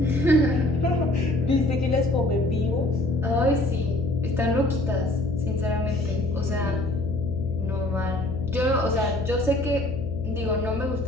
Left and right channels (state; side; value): noise; left; hum, 8 dB below the sound